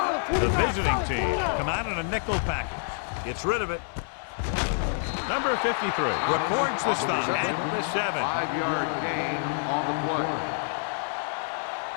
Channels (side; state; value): right; silent; digital silence